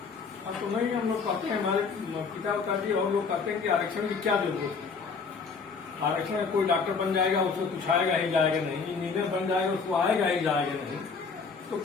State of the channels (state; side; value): quieter; right; 5.1 dB